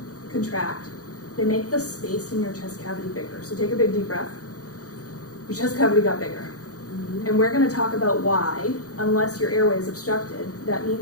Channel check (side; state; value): right; late; 0.66 ms